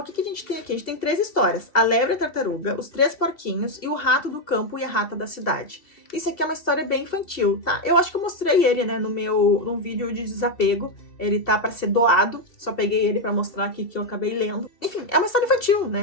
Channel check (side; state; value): right; late; 2.7 ms